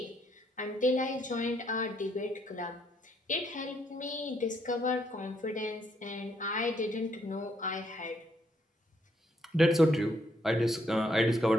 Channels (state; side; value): normal; both; correlation 0.73